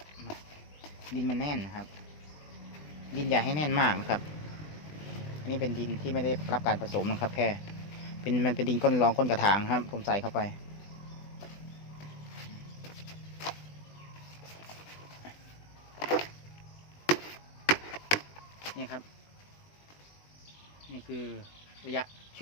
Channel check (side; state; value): right; late; 20 ms